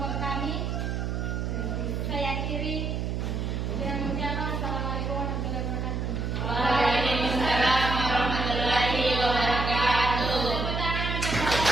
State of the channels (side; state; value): right; noise; hum, 1 dB below the sound